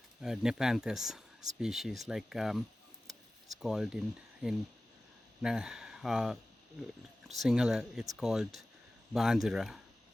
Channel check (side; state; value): both; normal; correlation 0.96